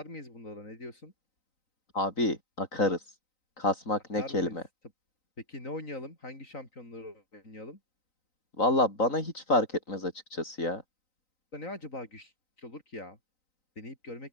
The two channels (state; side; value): late; right; 3.9 ms